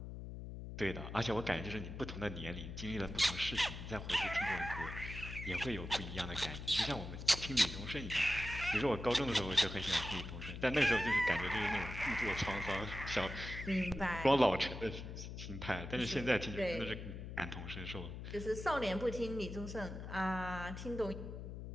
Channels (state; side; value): noise; left; hum, 8 dB below the sound